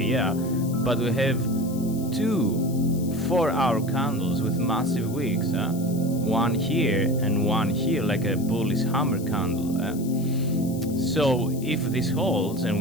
yeah, but we have 2 4-hour candles with massive wicks, one here and one here, like a bullish hammer candle. So if this holds and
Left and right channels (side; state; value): left; noise; hiss, 17 dB below the sound